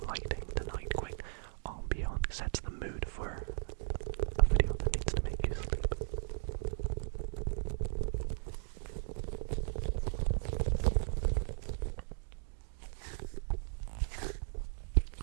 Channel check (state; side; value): silent; left; digital silence